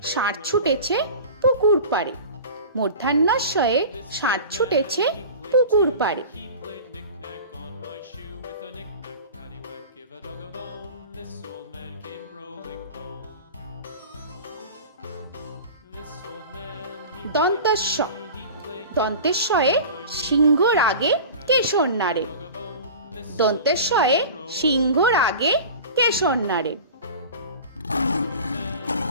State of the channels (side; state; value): both; inverted; correlation -0.36